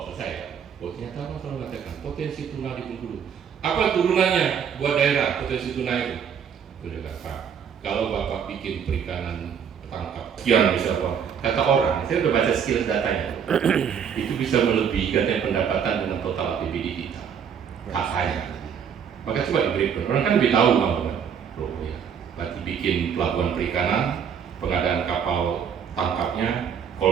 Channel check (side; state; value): left; quieter; 7.6 dB